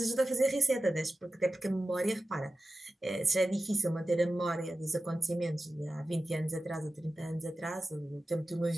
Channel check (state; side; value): normal; both; correlation 0.94